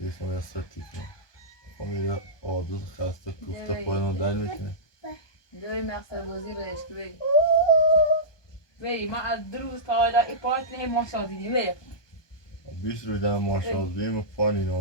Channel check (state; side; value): late; right; 1.2 ms